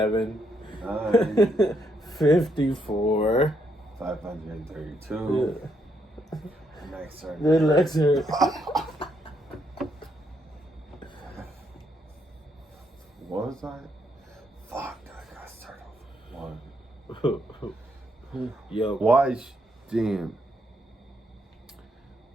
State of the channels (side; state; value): both; normal; correlation 0.76